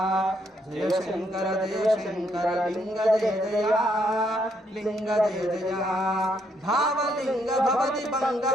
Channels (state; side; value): normal; both; correlation 0.73